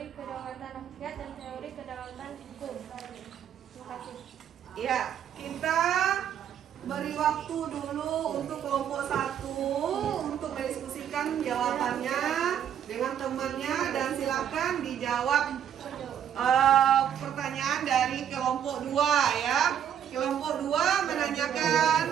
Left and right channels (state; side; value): quieter; left; 9.3 dB